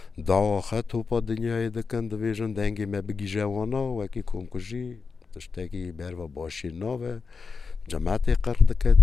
داواخه توپا دنیای دکن دویجن دنگی ما بگی جوانا وکی کمکجی تشتگی بروا باشی ناوه جماعت قرد که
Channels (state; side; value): quieter; right; 4.9 dB